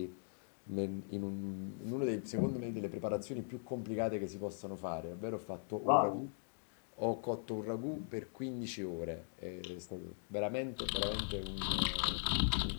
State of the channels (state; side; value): silent; right; digital silence